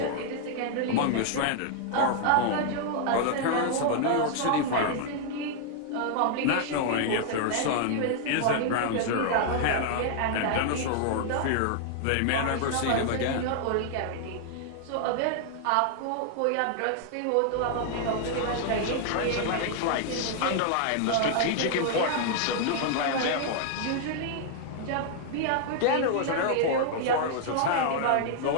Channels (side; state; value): both; different; correlation 0.00